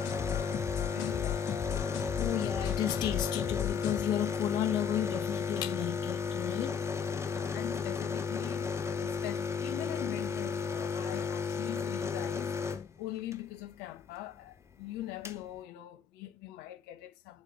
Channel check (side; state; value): right; quieter; 7.0 dB